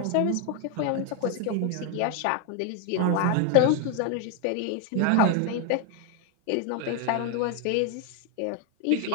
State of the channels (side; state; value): both; different; correlation 0.01